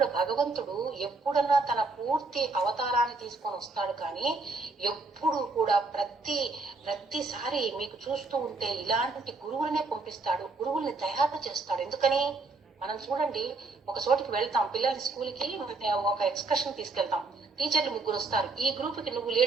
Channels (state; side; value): quieter; left; 3.6 dB